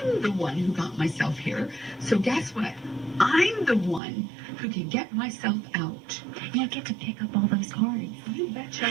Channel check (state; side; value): drops out; left; at 4.0 s